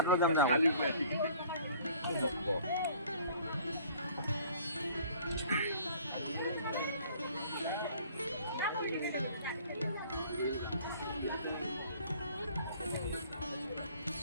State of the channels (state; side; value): inverted; both; correlation -0.53